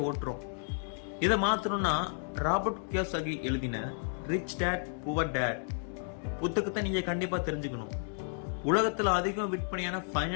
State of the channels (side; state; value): right; silent; digital silence